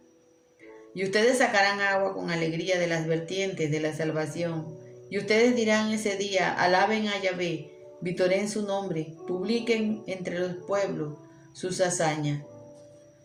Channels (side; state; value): both; identical; correlation 1.00